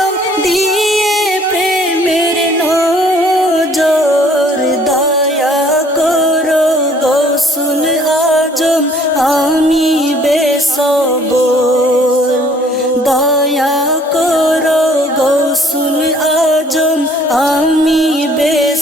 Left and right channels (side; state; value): both; normal; correlation 0.58